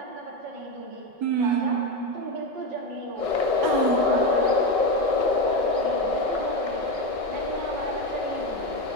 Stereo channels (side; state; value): left; late; 5.3 ms